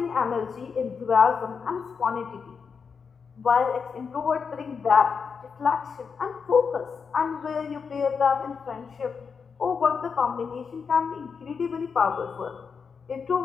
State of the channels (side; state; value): right; quieter; 5.8 dB